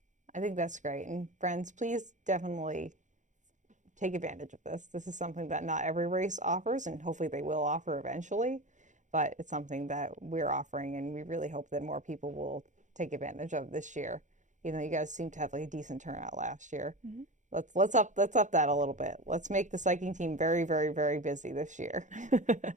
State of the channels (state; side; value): late; left; 0.36 ms